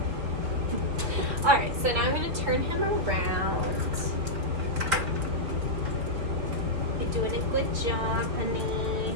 Alright, so now I'm going to turn him around. You're doing a good job, honey.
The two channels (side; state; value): left; late; 4.2 ms